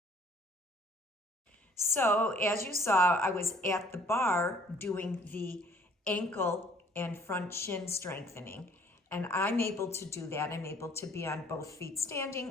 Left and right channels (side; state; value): both; normal; correlation 0.57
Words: So, as you saw, I was at the bar doing the ankle and front shin strengthening. And I'm able to do that. I'm able to be on both feet